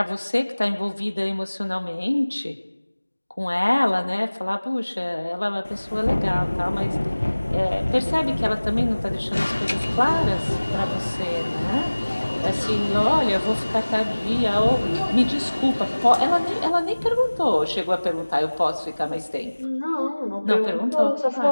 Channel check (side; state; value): both; inverted; correlation -1.00